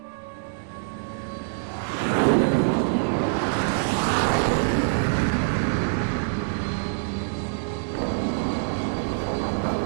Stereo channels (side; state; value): left; silent; digital silence